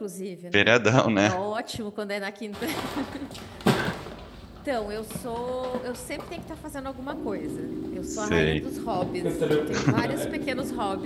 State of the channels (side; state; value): both; identical; correlation 1.00